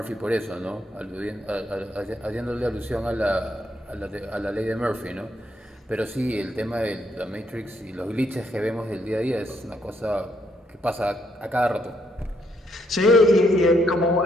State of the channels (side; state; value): both; normal; correlation 0.74